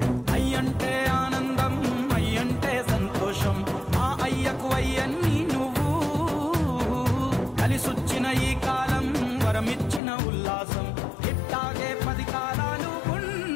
అయ్యంటే ఆనందం, అయ్యంటే సంతోషం, మా అయ్యకు అయ్యన్ని నువ్వు. కలిసొచ్చిన ఈ కాలం వరమిచ్చిన ఉల్లాసం, ఇట్టాగే 10 కాలాలు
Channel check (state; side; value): drops out; right; at 10.0 s